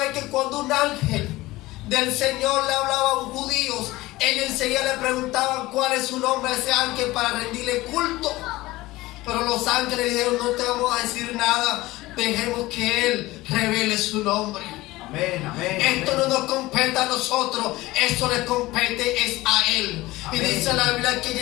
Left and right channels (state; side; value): quieter; right; 18.9 dB